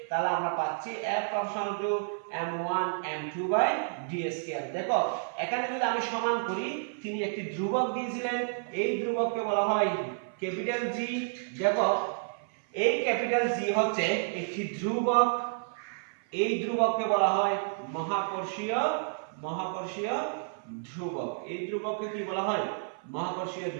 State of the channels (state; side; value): silent; left; 56 dB below the other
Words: তাহলে আমরা পাচ্ছি F proportional to m1 m2/d²। দেখো, এখানে যদি আমি সমান করি, তিনি একটি ধ্রুবক দিয়েছিলেন। এই ধ্রুবককে বলা হয় ক্যাপিটাল G। দেখো, এই ক্যাপিটাল জি হচ্ছে একটি ধ্রুবক। এই ধ্রুবককে বলা হয় মহাকর্ষীয় ধ্রুবক। এই ধ্রুবককে কি বলা হয়? মহাকর্ষীয়